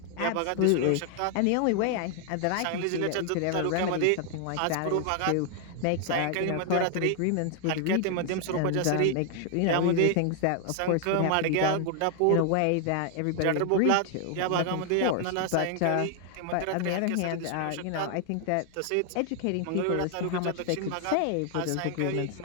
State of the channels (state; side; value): different; both; correlation 0.00